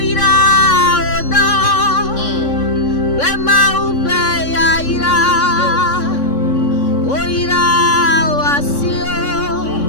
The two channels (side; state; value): right; late; 3.6 ms